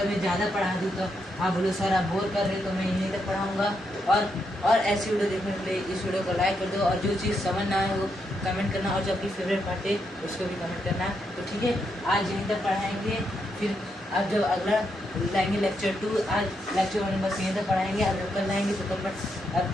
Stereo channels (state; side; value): normal; both; correlation 0.81